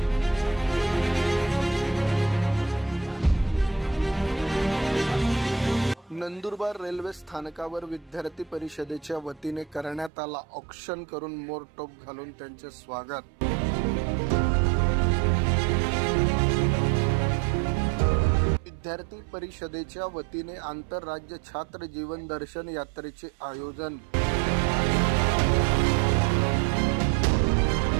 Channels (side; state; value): left; drops out; at 10.1 s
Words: नंदुरबार रेल्वे स्थानकावर विद्यार्थी परिषदेच्या वतीने करण्यात आला औक्षण करून मोरटोप घालून त्यांचे स्वागत। विद्यार्थी परिषदेच्या वतीने आंतरराज्य छात्र जीवन दर्शन यात्रेचे आयोजन।